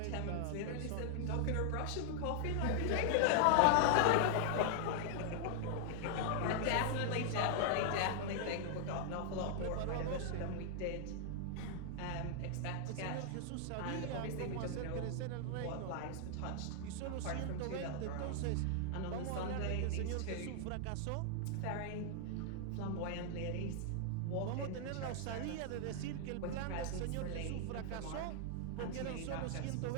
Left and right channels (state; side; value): different; both; correlation 0.00